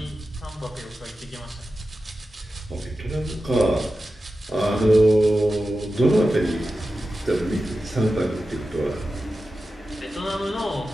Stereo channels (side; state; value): both; normal; correlation 0.92